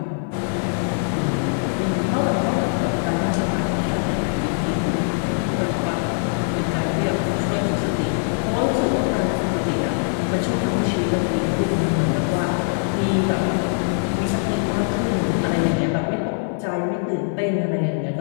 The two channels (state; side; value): silent; right; 55 dB below the other